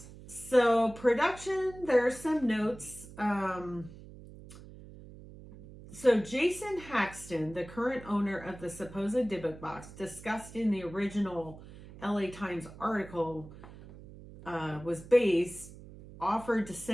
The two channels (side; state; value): right; noise; hum, 17 dB below the sound